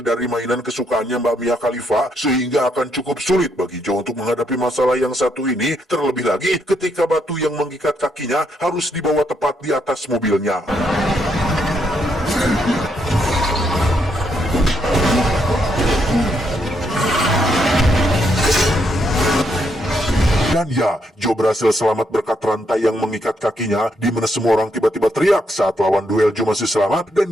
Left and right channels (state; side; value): normal; both; correlation 0.76